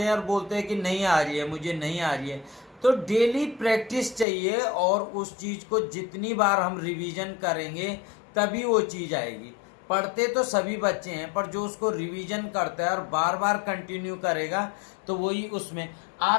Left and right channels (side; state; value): right; drops out; at 4.2 s